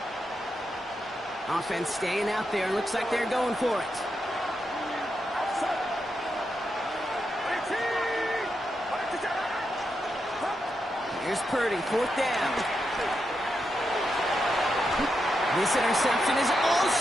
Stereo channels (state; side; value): normal; both; correlation 0.85